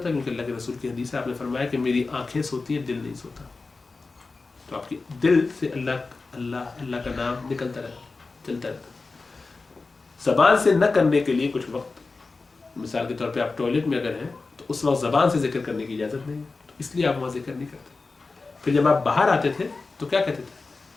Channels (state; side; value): quieter; right; 3.9 dB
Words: کیونکہ اللہ کے رسول کی حدیث ہے آپ نے فرمایا کہ میری آنکھیں سوتی ہیں دل نہیں سوتا. تو آپ کی دل سے اللہ اللہ اللہ کا نام نکلتا رہتا، چلتا رہتا. زبان سے نہ کرنے کے لیے کچھ وقت، مثال کے طور پہ آپ ٹوائلٹ میں اگر ہیں تو اس وقت زبان سے ذکر کرنے کی اجازت نہیں ہے، تو اس لیے آپ وہاں ذکر نہیں کرتے. پھر جب آپ باہر آتے تھے تو کیا کہتے تھے؟